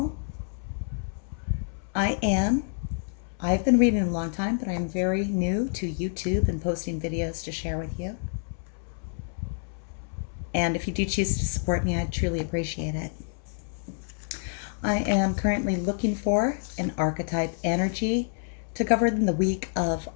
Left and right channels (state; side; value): silent; right; 59 dB below the other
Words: I've been reading a long time, but I'm very new to YouTube and posting videos to share with you. And if you do choose to support me, I'd truly appreciate it. I am currently looking for an archetype energy to cover in the week of